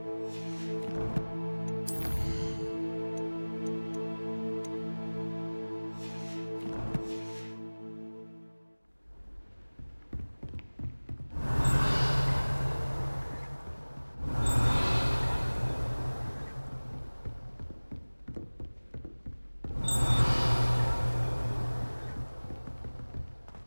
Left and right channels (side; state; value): both; inverted; correlation -1.00